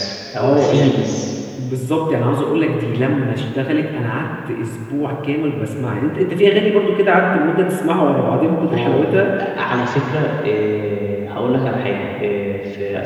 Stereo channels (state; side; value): identical; both; correlation 1.00